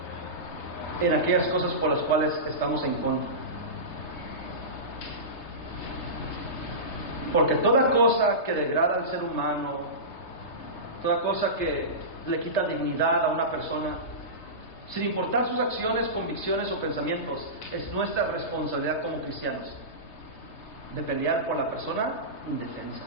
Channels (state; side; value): late; right; 3.3 ms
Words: en aquellas cosas por las cuales estamos en contra. Porque toda cosa que degrada al ser humano, toda cosa que le quita dignidad a una persona, sin importar sus acciones, convicciones o pensamientos, es nuestra responsabilidad como cristianos de pelear por la persona indefensa.